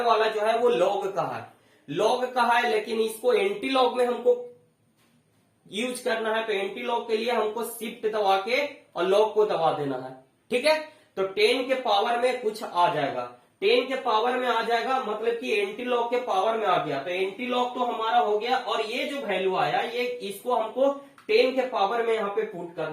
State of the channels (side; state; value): both; identical; correlation 1.00